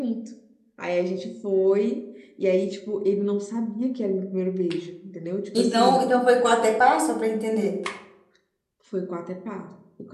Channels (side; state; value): both; identical; correlation 1.00